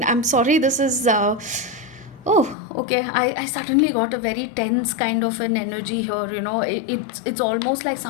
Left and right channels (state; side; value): drops out; right; at 2.6 s